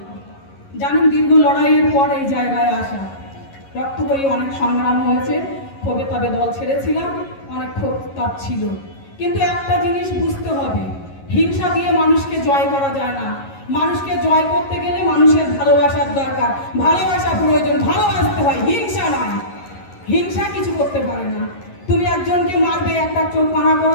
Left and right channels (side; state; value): right; late; 11 ms